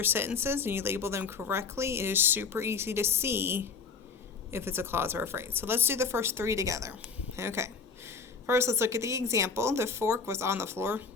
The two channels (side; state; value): right; quieter; 5.1 dB